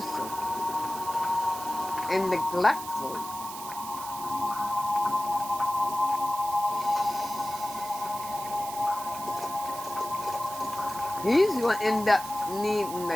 and neglectful. He's going to end up needing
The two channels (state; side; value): noise; right; hiss, 11 dB below the sound